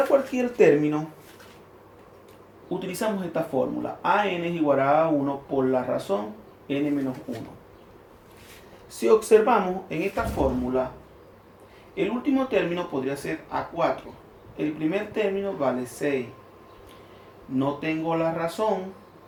cualquier término, utilizamos esta fórmula. AN es igual a A1 por la razón n menos 1. Si observamos en esta fórmula, el último término podría ser A4. El primer término vale 6. No tengo la razón.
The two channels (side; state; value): both; identical; correlation 1.00